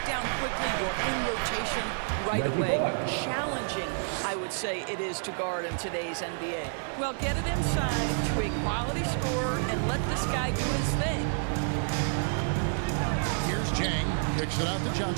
down quickly. You're in rotation right away. Challenging, I would say it is to guard in today's NBA. Well, get it inside to a quality scorer and let this guy do his thing. Here's Jang. Kicks it out to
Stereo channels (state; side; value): silent; left; digital silence